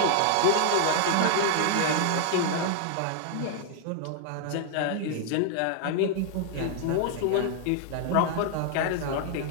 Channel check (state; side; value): different; both; correlation 0.00